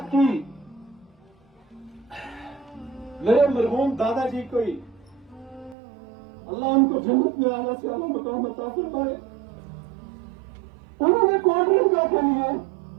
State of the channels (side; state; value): left; drops out; at 5.8 s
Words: کی میرے مرحوم دادا جی کو ہی اللہ ان کو جنت میں آنا سے اللہ مقام عطا فرمائے. انہوں نے کولڈ ڈرنک کے لیے